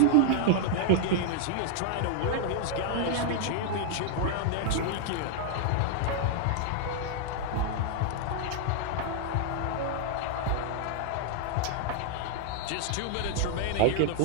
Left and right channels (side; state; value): both; different; correlation 0.00